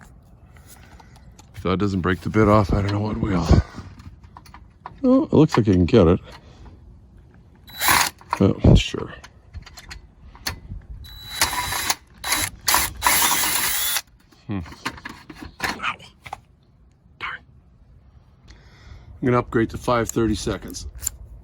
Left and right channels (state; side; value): identical; both; correlation 1.00